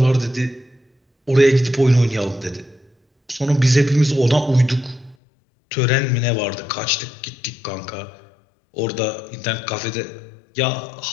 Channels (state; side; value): drops out; right; at 5.2 s